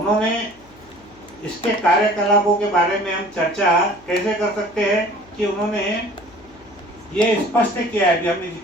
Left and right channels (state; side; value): noise; left; hum, 27 dB below the sound